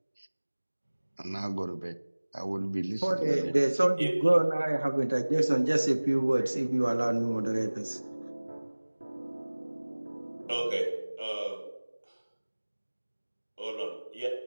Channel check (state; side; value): inverted; both; correlation -1.00